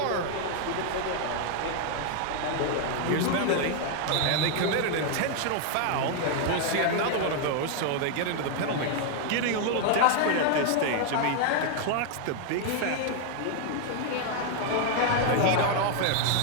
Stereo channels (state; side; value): different; both; correlation 0.00